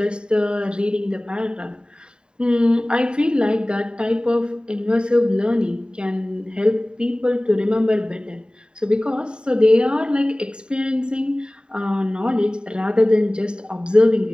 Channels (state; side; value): late; left; 0.049 ms